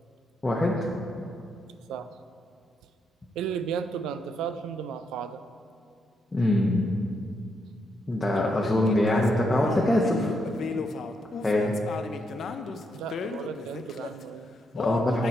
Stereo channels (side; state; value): both; normal; correlation 0.79